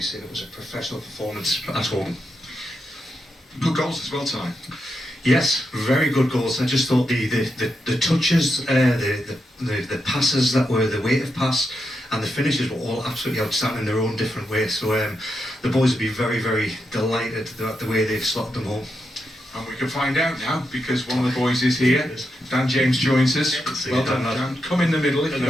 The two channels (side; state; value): both; normal; correlation 0.85